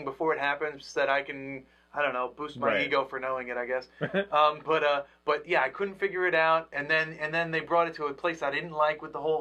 before it happens so that I can, I don't know, boost my ego for knowing it, I guess. But yeah, I couldn't figure it out, and then they brought it to a place I didn't like with the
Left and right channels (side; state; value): both; identical; correlation 1.00